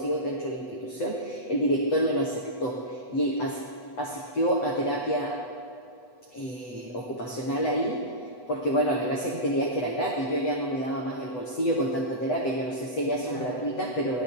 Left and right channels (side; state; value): right; late; 8.0 ms